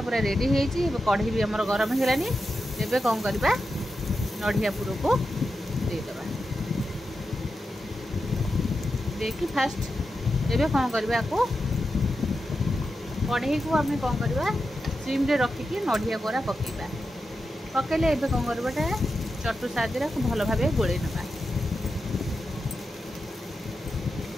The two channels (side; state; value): both; normal; correlation 0.89